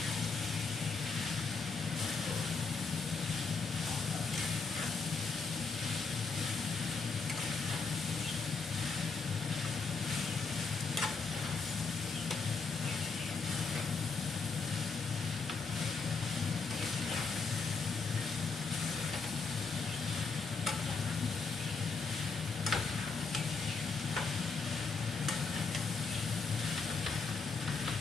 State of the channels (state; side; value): quieter; right; 4.6 dB